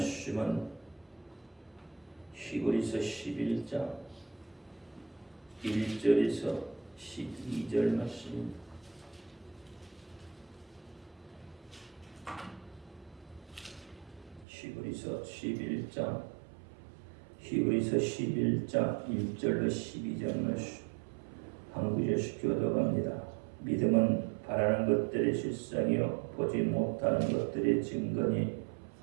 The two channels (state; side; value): drops out; left; at 14.5 s